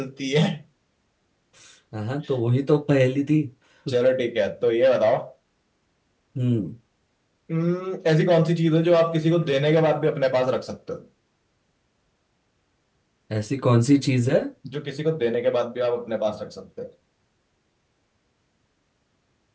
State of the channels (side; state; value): both; identical; correlation 1.00